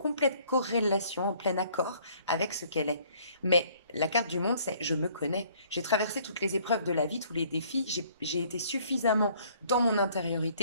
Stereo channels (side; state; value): both; inverted; correlation -0.59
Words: corrélation, en plein accord avec ce qu'elle est. Mais la carte du monde, c'est je me connais. J'ai traversé toutes les épreuves de la vie, tous les défis. J'ai été suffisamment dans mon